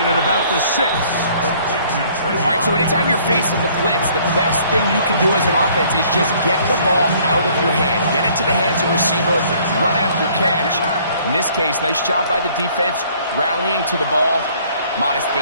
at about the 6. All right, so anytime you're facing the blitz, the best thing you can do as an offense is just get the ball out of your hand. Get into the hands of receiver, run after catch. In this case, nice job by the defense, rallying to the ball. Modest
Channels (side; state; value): both; inverted; correlation -0.59